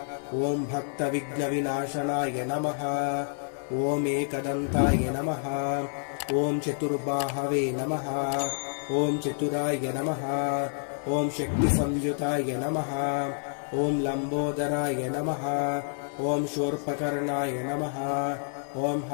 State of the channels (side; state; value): right; silent; digital silence